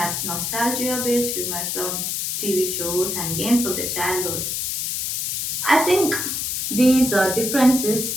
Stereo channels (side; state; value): left; noise; hiss, 1 dB below the sound